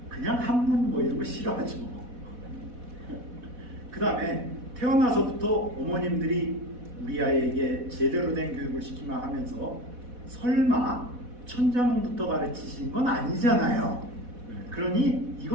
그냥 한문 뭐 이런 거 싫어하죠. 그 다음에 태어나서부터 어머님들이 우리 아이에게 제대로 된 교육을 시키며 하면서 설마 천자문부터 가르치신 건 아니잖아요. 그러니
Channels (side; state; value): left; late; 4.1 ms